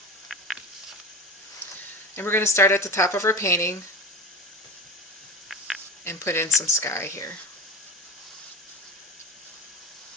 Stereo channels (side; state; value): both; normal; correlation 0.29